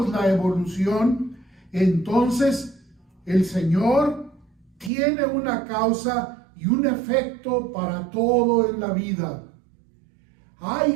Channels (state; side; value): drops out; left; at 4.9 s